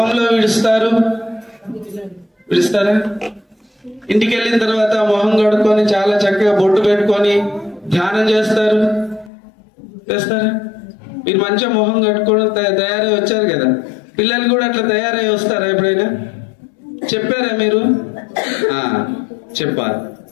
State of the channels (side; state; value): right; drops out; at 9.3 s